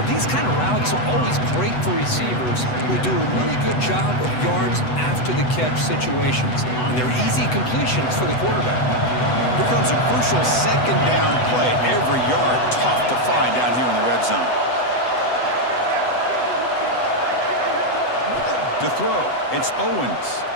these kind of routes are always great for receivers who do a really good job of yards after the catch situations. And they're easy completions for the quarterback. Here comes a crucial second down play. Every yard tough to find down here in the red zone. To throw, it's Owens.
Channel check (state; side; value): late; right; 8.0 ms